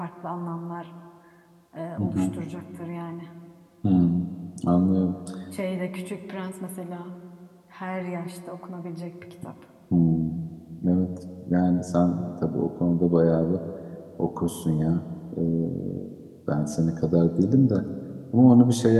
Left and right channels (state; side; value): identical; both; correlation 1.00